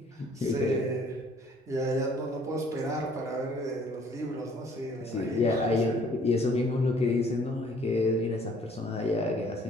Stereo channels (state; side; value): normal; both; correlation 0.58